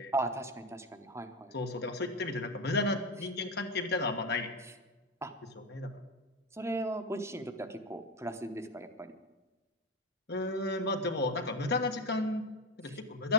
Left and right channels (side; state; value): both; normal; correlation 0.19